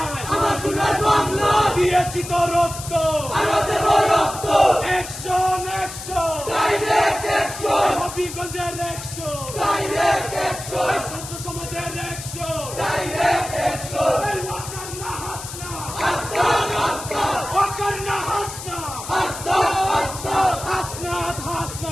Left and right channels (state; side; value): noise; left; hiss, 10 dB below the sound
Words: আমার সোনার বাংলা দিয়েছি তো রক্ত, অ্যাকশন অ্যাকশন হবিগঞ্জের অ্যাকশন, ছাত্র সমাজের অ্যাকশন,